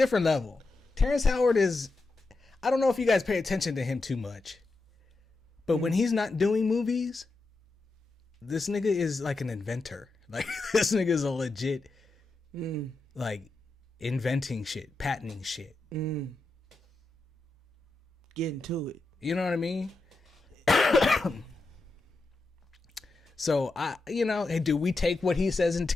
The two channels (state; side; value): quieter; right; 3.3 dB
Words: level. Terrence Howard is, I don't know if you guys pay attention to him too much, but when he's not doing movies, this nigga is like an inventor. Like, this nigga is a legit, like, inventing shit, patenting shit. Getting to it. You know what I mean? So, do we take what he says into